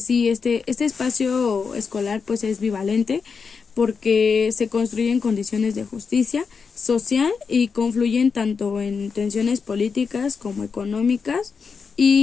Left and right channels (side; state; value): right; quieter; 5.5 dB